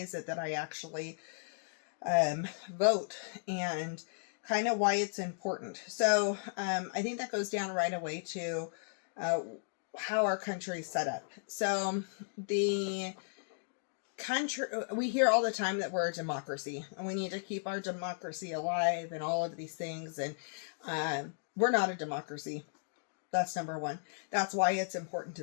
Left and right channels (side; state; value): right; silent; digital silence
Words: it that I actually vote and kind of why it's important. So I think that goes down right away to how our country is set up. So the country, we hear all the time that we're a democracy and we need to keep our democracy alive and all of these things. And we're not a democracy. That's number one. That's why it's important